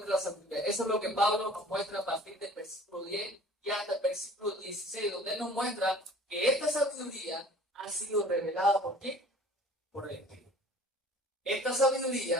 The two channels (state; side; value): normal; both; correlation 0.48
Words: la sabiduría. Eso es lo que Pablo nos muestra a partir del versículo 10 y hasta el versículo 16, donde él nos muestra que esta sabiduría ha sido revelada por quién? Por el Espíritu. Esta